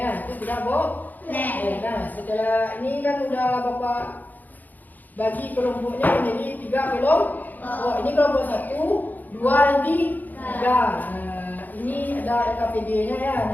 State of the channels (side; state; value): right; late; 0.083 ms